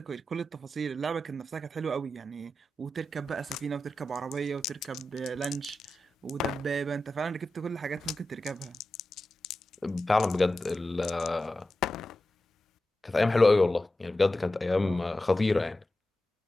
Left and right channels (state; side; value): normal; both; correlation 0.92